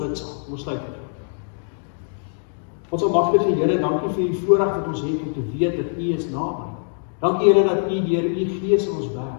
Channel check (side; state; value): right; silent; digital silence